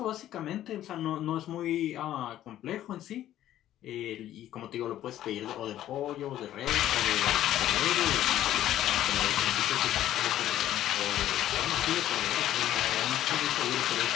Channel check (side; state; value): right; quieter; 12.6 dB